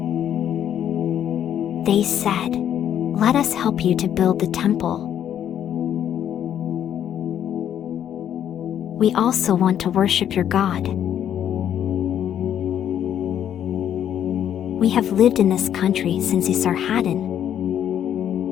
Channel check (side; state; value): right; quieter; 10.0 dB